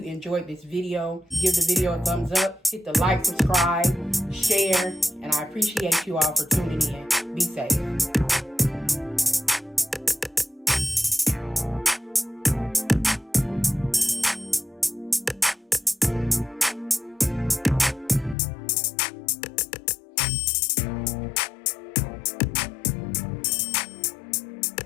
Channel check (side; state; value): right; drops out; at 18.4 s